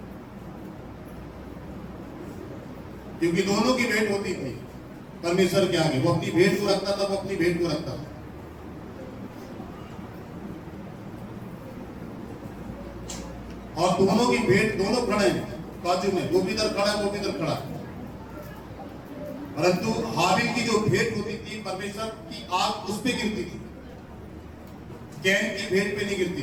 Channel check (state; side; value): identical; both; correlation 1.00